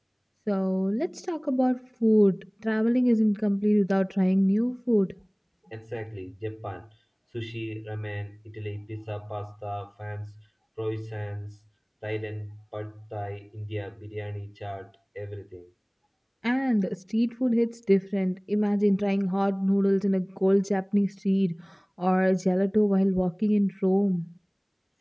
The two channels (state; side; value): identical; both; correlation 1.00